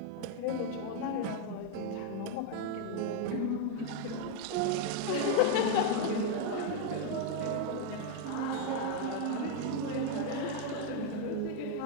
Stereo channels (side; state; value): both; different; correlation 0.00